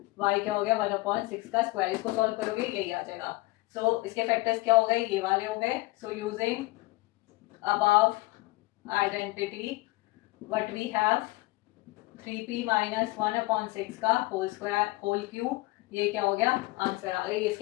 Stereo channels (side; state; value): right; quieter; 21.8 dB